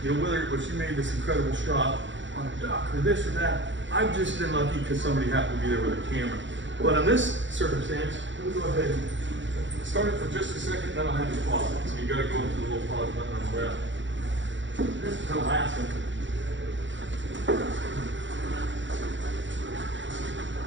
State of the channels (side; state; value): left; late; 0.54 ms